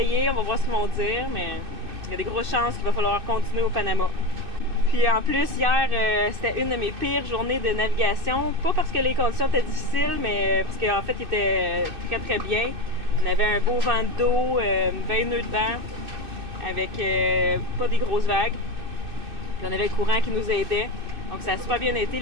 on va voir ce qu'ils vont dire, mais il y a des grosses chances qu'il va falloir continuer au Panama. Puis en plus, hier, c'était une de mes pires journées de navigation. Pas parce que les conditions étaient difficiles, mais parce qu'en fait, il était très très bien. On avait un beau vent d'eau, 20 nœuds de vent, avec pas des grosses vagues. Puis on avait le courant qui nous aidait. Donc ça a super bien été,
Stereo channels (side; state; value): left; late; 2.6 ms